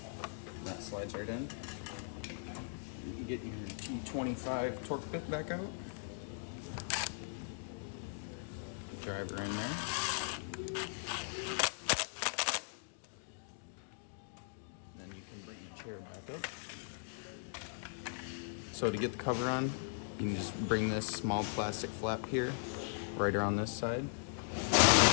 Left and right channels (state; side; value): silent; right; digital silence